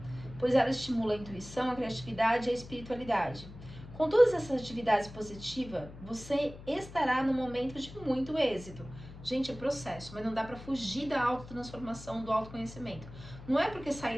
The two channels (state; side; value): noise; left; hum, 15 dB below the sound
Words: pois ela estimula a intuição, a criatividade e a espiritualidade. Com todas essas atividades positivas, você estará no momento de muito êxito. Gente, é processo, mas não dá para fugir da autotransformação, do autoconhecimento. Não é porque